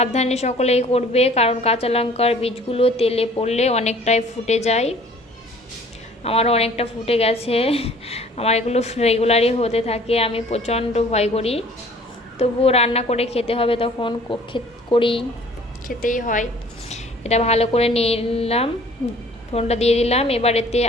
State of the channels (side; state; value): both; normal; correlation 0.52